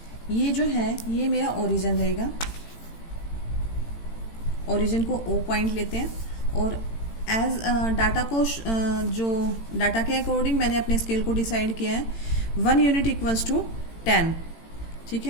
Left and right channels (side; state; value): right; late; 18 ms